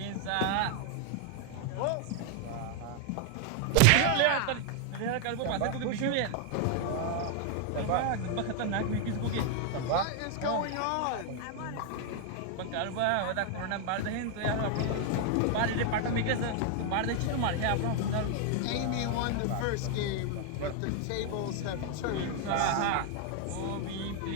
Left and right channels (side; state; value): both; different; correlation 0.00